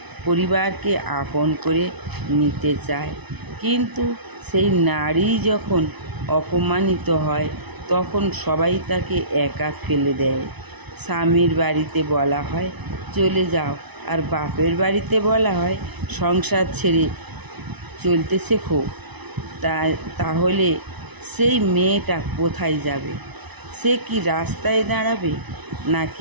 পরিবারকে আপন করে নিতে চায়। কিন্তু সেই নারী যখন অপমানিত হয় তখন সবাই তাকে একা ফেলে দেয়। স্বামীর বাড়িতে বলা হয় চলে যাও, আর বাপের বাড়িতে বলা হয় সংসার ছেড়ে চলতে শেখো। তাহলে সেই মেয়েটা কোথায় যাবে? সে কি রাস্তায় দাঁড়াবে,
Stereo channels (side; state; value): left; late; 1.0 ms